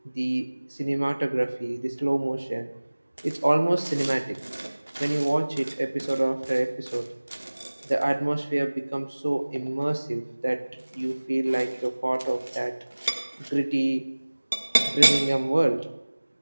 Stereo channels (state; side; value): inverted; both; correlation -1.00